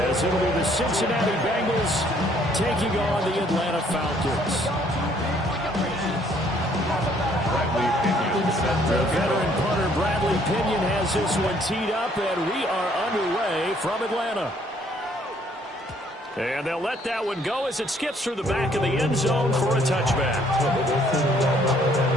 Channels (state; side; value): normal; both; correlation 0.64